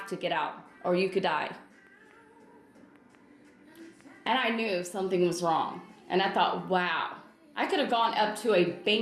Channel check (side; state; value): both; identical; correlation 1.00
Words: to get out or you could die. And I knew something was wrong. And I thought, wow, I could have gone up to a